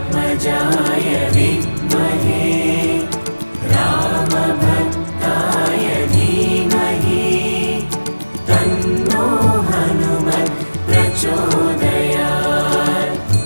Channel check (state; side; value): inverted; both; correlation -1.00